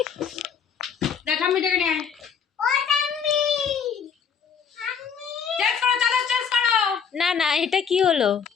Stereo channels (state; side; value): quieter; right; 6.8 dB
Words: দেখ আমি ডেকে নিয়ে না না, এটা কি হলো?